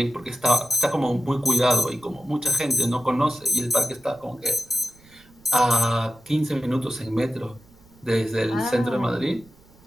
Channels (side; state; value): right; noise; rumble, 28 dB below the sound